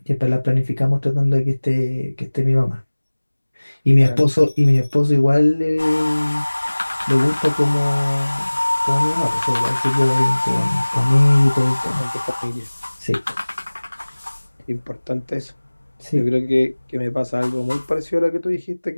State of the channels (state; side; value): inverted; both; correlation -1.00